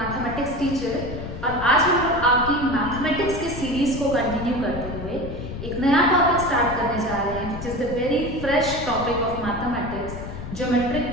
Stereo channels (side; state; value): left; noise; rumble, 9 dB below the sound